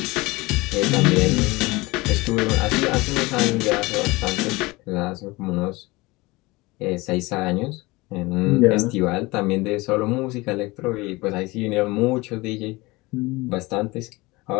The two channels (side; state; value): right; quieter; 22.5 dB